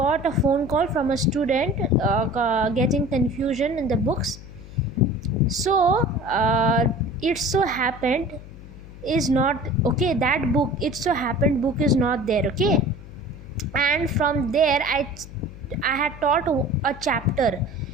a phone call from a student getting confusion in the books, so it so happened is not okay, that book, it so happened book is not there, okay? And from there I had taught a chapter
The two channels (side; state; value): left; noise; hum, 16 dB below the sound